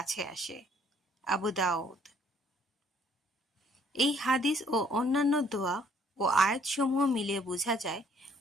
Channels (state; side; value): normal; both; correlation 0.62